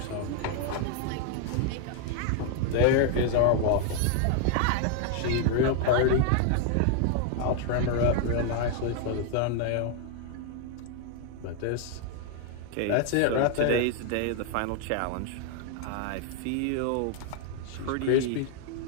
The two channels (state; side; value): different; both; correlation 0.00